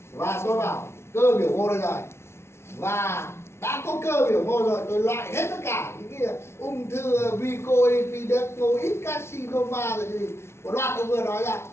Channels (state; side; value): late; right; 0.12 ms